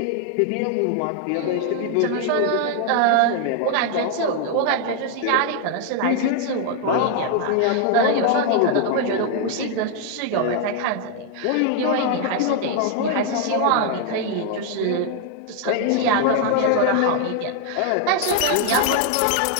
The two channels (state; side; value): different; both; correlation 0.00